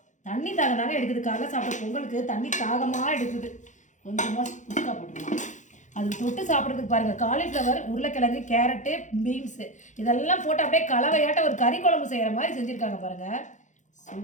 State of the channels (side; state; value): right; late; 0.36 ms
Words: தண்ணி தாகமாக எடுக்குது. காலைல சாப்பிட்ற பொங்கலுக்கு தண்ணி தாகமாக எடுக்குது. கொஞ்சமாக குஸ்கா போட்டுக்கலாம். அது தொட்டு சாப்பிட்றதுக்கு பாருங்கள், காலிஃப்ளவர், உருளைக்கிழங்கு, கேரட்டு, பீன்ஸு இதெல்லாம் போட்டு அப்படியே கலவையாட்ட ஒரு கறி குழம்பு செய்கிற மாதிரி செஞ்சுருக்காங்க பாருங்கள்.